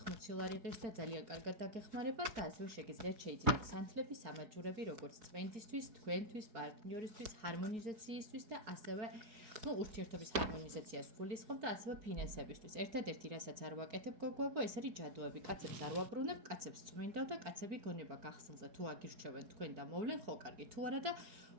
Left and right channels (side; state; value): left; late; 4.7 ms